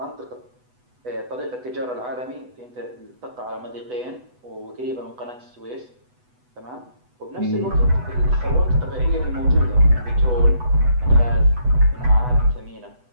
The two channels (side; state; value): left; late; 8.1 ms